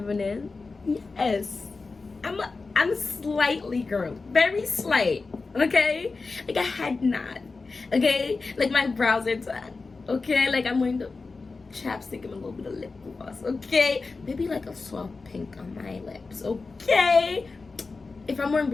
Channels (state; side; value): quieter; right; 4.0 dB